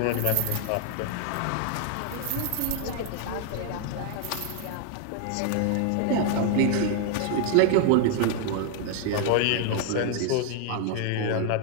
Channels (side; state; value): both; different; correlation 0.00